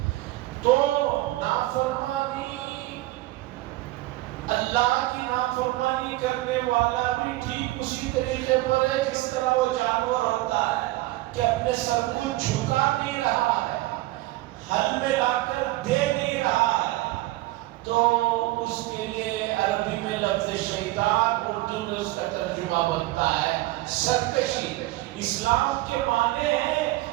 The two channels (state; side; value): quieter; left; 18.4 dB